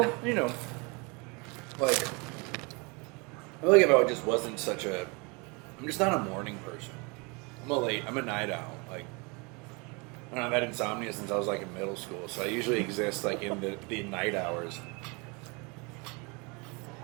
you know, like, I feel like if I just wasn't I'm just not a morning person. I'm a night owl. Like, I don't know, I've had insomnia since I was like in middle school, so I usually exist like in the night hours.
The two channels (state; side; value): quieter; left; 29.7 dB